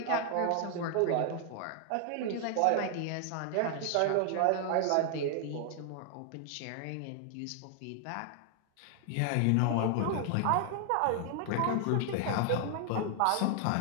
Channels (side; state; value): both; different; correlation 0.00